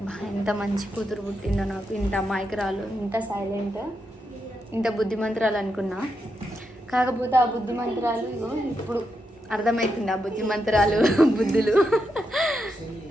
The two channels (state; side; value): normal; both; correlation 0.84